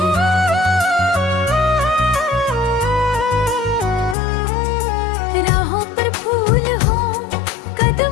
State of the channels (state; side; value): drops out; right; at 4.2 s